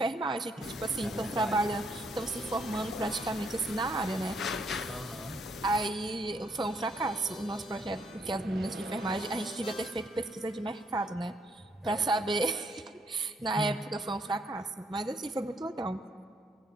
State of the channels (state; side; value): normal; both; correlation 0.71